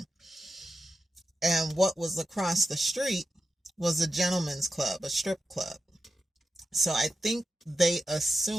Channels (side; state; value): both; normal; correlation 0.90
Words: And what was across the street was a gentleman's club, a strip club. So I think they